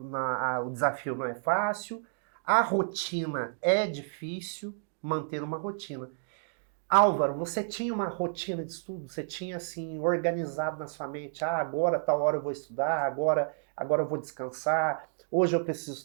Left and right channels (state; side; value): silent; left; digital silence